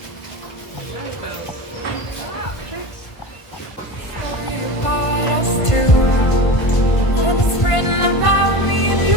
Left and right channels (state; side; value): late; right; 1.5 ms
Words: Story about us two, and it's written about me and